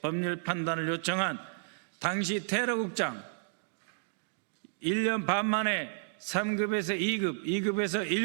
법률 판단을 요청한 당시 테러국장 1년 반 만에 3급에서 2급, 2급에서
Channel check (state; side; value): silent; left; digital silence